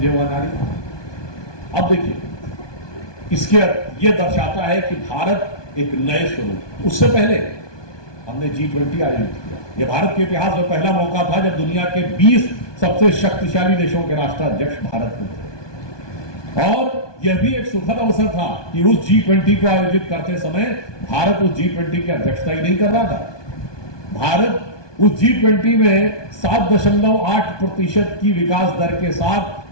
हुआ नारी। अब देखिए, इसके ये दर्शाता है कि भारत एक नए स्वरूप। उससे पहले हमने G20 आयोजित किया। यह भारत के इतिहास में पहला मौका था जब दुनिया के 20 सबसे शक्तिशाली देशों के राष्ट्राध्यक्ष भारत में थे। और यह भी एक सुखद अवसर था कि उस G20 को आयोजित करते समय भारत उस G20 की अध्यक्षता ही नहीं कर रहा था। भारत उस G20 में 7.8% की विकास दर के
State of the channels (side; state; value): right; late; 1.2 ms